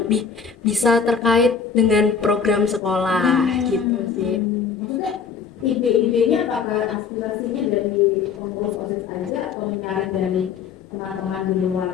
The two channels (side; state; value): right; quieter; 6.2 dB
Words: bisa terkait dengan program sekolah gitu sih. Maksudnya ide-idenya apakah aspirasinya dari pengurus OSIS aja atau menyaring dari teman-teman di luar